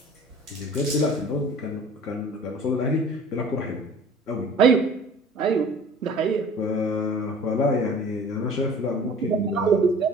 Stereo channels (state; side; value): normal; both; correlation 0.45